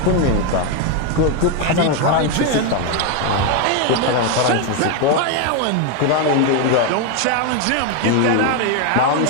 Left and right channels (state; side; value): different; both; correlation 0.02